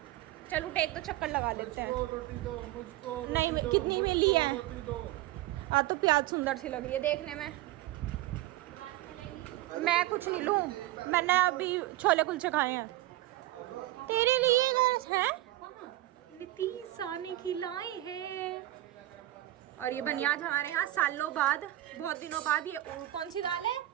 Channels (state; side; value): quieter; left; 15.9 dB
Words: चल उठ, एक तो चक्कर लगा लेते हैं। रोटी दो मुझको, नहीं, रोटी दो, कितनी में ली है? रोटी दो। तो प्याज सुंदर सी लग रही है देखने में। मैं कुछ नहीं लूं, मैंने अभी छोले कुलचे खाए हैं। तेरे लिए है नितीशा ने खिलाए हैं। और ये बनियाज हमारे यहाँ सालों बाद, बहुत दिनों बाद, ये कौन सी दाल है?